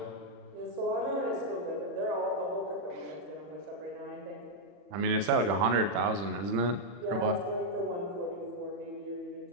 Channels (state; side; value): late; left; 40 ms